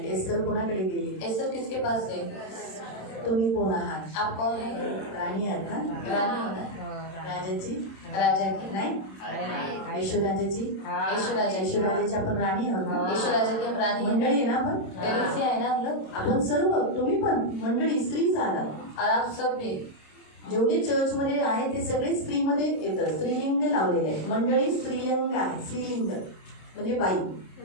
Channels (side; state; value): right; late; 27 ms